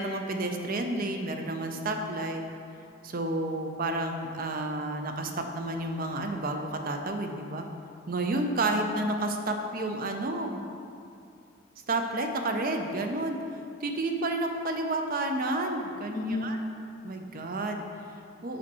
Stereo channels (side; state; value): both; normal; correlation 0.19